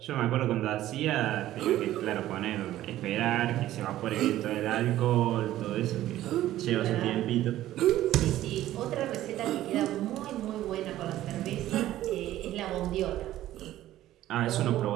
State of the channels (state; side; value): quieter; left; 14.0 dB